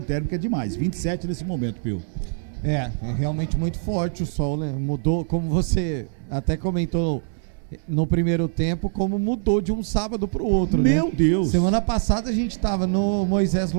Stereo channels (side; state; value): left; silent; digital silence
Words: é demais, 27 nesse momento, Pio. É realmente muito forte o sol, né? Mudou, como você até comentou no primeiro tempo, como mudou de um sábado pro outro, Meu né? Deus! Semana passada a gente tava no Moisés